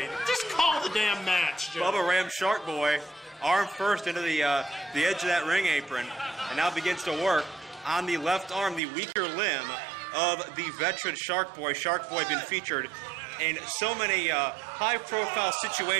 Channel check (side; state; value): left; drops out; at 8.8 s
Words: Just call the damn match, Joe. Bubba rammed Shark Boy arm first into the edge of that ring apron, and now begins to work on the left arm, the weaker limb of the veteran Shark Boy. Shark Boy been featured in so many high-profile